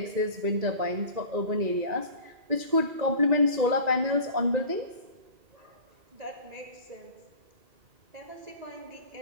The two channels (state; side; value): late; left; 2.0 ms